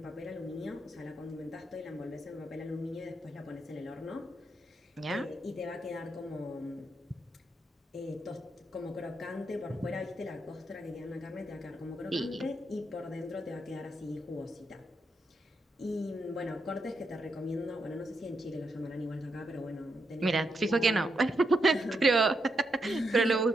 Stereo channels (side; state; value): both; normal; correlation 0.81